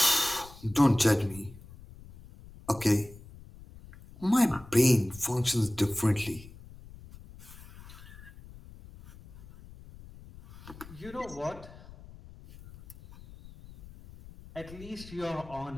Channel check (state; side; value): noise; left; rumble, 19 dB below the sound